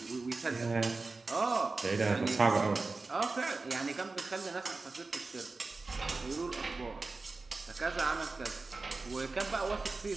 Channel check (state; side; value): quieter; left; 3.7 dB